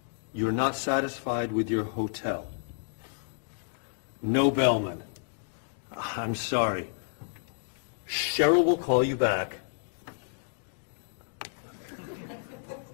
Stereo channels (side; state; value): right; silent; digital silence